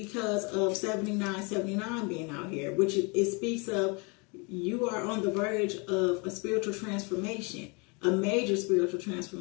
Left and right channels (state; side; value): quieter; right; 31.1 dB